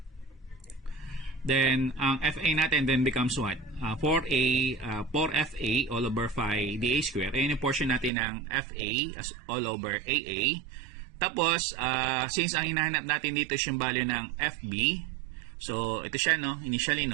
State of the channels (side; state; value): left; drops out; at 8.1 s